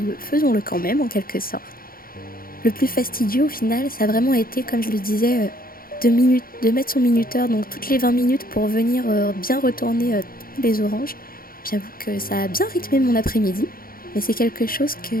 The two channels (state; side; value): late; right; 0.42 ms